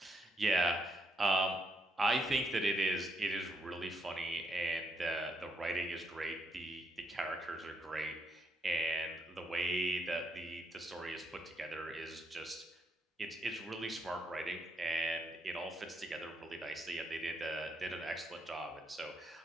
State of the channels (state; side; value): normal; both; correlation 0.77